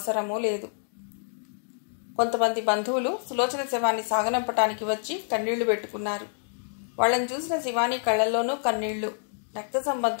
లేదు. కొంతమంది బంధువులు సులోచన శవాన్ని సాగనంపటానికి వచ్చి కన్నీళ్లు పెట్టుకున్నారు. వాళ్ళని చూసిన శివాని కళ్లల్లోనూ కన్నీళ్లు. రక్త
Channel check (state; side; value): silent; right; digital silence